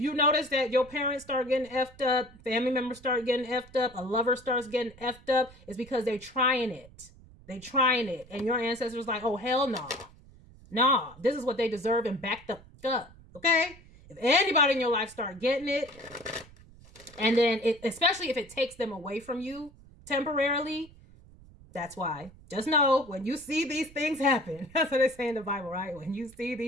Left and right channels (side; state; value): right; noise; rumble, 23 dB below the sound